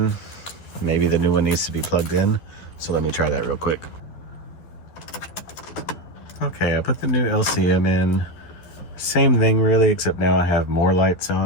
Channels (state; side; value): late; right; 11 ms